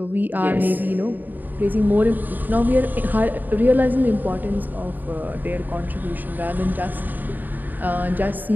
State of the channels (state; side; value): late; left; 0.087 ms